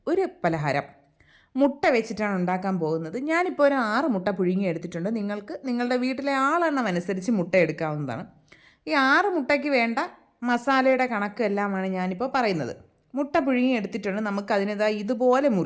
ഒരു പലഹാരം മുട്ട വെച്ചിട്ടാണ് ഉണ്ടാക്കാൻ പോകുന്നത്. ഞാനിപ്പോൾ ഒരു 6 മുട്ട പുഴുങ്ങി എടുത്തിട്ടുണ്ട്. നിങ്ങൾക്ക് നിങ്ങളുടെ വീട്ടിലെ ആളെണ്ണം അനുസരിച്ച് മുട്ട എടുക്കാവുന്നതാണ്. ഈ 6 മുട്ടയ്ക്ക് വേണ്ട മസാലയുടെ കണക്ക് എല്ലാമാണ് ഞാനിപ്പോൾ പറയുന്നത്. മുട്ട പുഴുങ്ങി എടുത്തിട്ടുണ്ട്. നമുക്കതിനേതാ ഇതുപോലെ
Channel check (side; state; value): both; identical; correlation 1.00